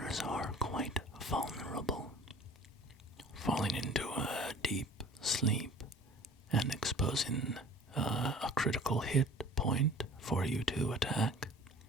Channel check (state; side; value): normal; both; correlation 0.46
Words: are quite vulnerable, falling into a deep sleep and exposing a critical hit point for you to attack.